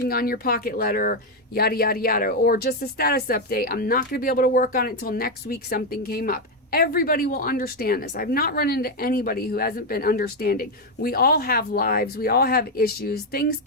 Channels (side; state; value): both; normal; correlation 0.05